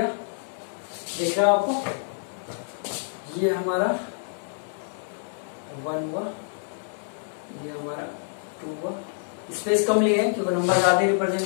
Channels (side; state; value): right; silent; 60 dB below the other